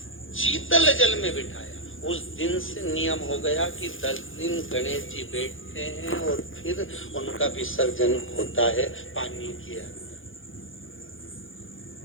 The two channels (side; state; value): right; late; 0.58 ms